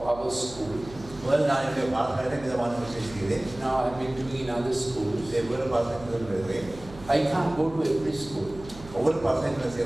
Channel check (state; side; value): noise; right; hum, 17 dB below the sound